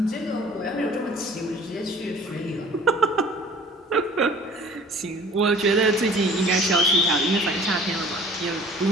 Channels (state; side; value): normal; both; correlation 0.49